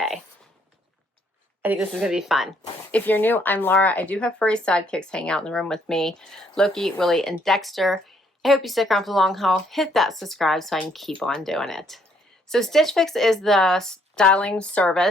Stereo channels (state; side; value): normal; both; correlation 0.68